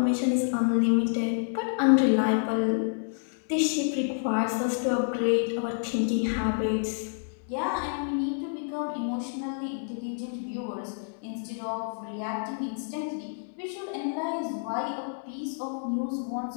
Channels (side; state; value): right; silent; digital silence